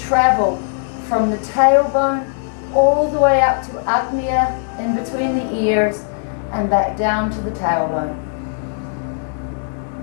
from the tailbone all the way up to Agnya, in between the ears, and back down to the tailbone.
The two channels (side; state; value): right; silent; digital silence